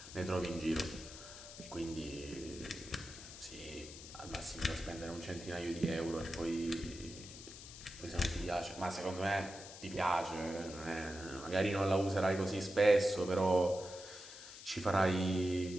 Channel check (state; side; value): noise; left; hiss, 14 dB below the sound